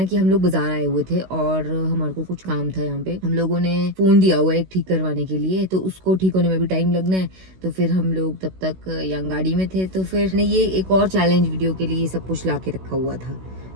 कि हम लोग बाजार आए हुए थे और हमारे को कुछ काम था यहाँ पे। हम लोगों ने फोन दिया हुआ है एक ठीक करवाने के लिए, तो उसको ठीक होने में भी टाइम लगना है। तो फिर हम लोग तब तक यहाँ गाड़ी में थे, तो फिर ने ये एक और चैलेंज वीडियो के लिए सब कुछ ला के रखा हुआ था।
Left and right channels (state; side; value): late; left; 16 ms